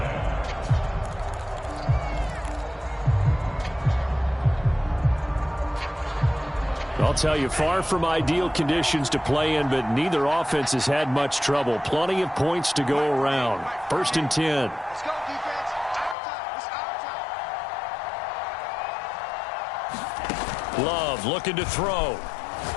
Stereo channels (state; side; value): drops out; right; at 16.2 s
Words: I'll tell you, far from ideal conditions to play in, but neither offense has had much trouble. Plenty of points to go around. 1st and 10. Let's go, defense. It's our time. Love looking to throw.